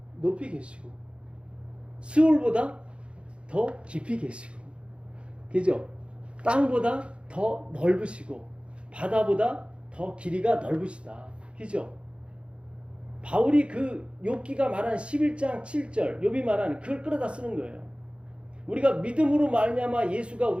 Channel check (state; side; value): late; left; 0.058 ms